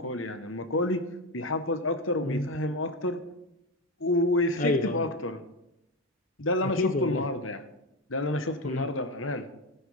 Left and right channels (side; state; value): both; normal; correlation 0.15